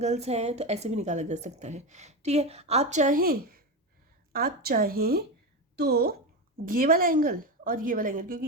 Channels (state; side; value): normal; both; correlation 0.17